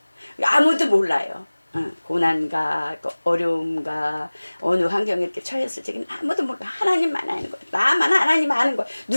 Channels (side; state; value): both; inverted; correlation -1.00